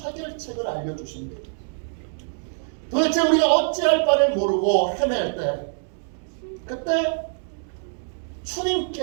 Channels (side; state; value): left; silent; 62 dB below the other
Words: 알려주십니다. 도대체 우리가 어찌할 바를 모르고 헤맬 때 그때